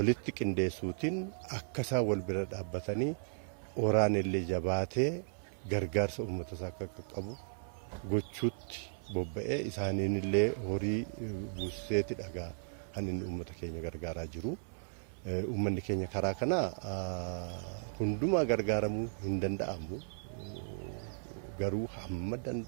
qindeessuutiin akka isaan wal bira dhaabbatanii oraan illee jabaatee gargaarsa uummata isaa akka qaqqabu gochuutti bobba'ee isaaniin illee horii buuseeti dhagaa kan inni uummata keenya gargaaraa jiru. Uummanni keenya karaa kana hundumaa gargaaramuu hin danda'amu. Garuu hamma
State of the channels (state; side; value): silent; left; 54 dB below the other